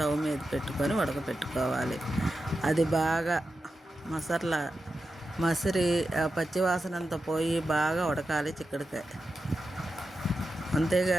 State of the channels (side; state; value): both; normal; correlation 0.90